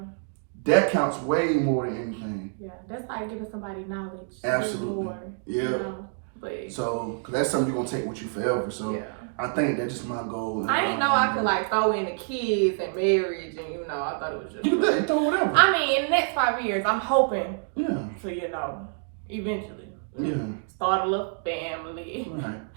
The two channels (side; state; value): left; silent; 60 dB below the other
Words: that counts way more than anything. Yeah, that's like giving somebody knowledge. Absolutely. More, But so, cause that's something you're gonna take with you forever. So yeah. I think that's just my goal. I didn't know I could like throw in the kids and marriage, and I thought it was just. You can throw whatever. I mean, in the next 5 years, I'm hoping. Yeah. To eventually. Yeah. Start a little family. Right.